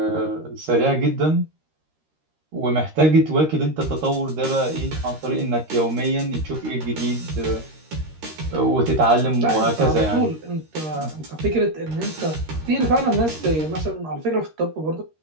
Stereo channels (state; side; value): late; left; 13 ms